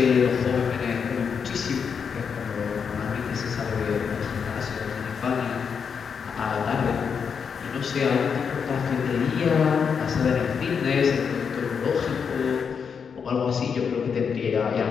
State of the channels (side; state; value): right; quieter; 6.5 dB